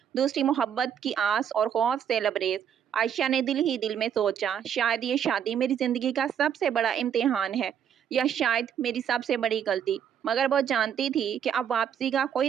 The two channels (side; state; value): left; quieter; 8.7 dB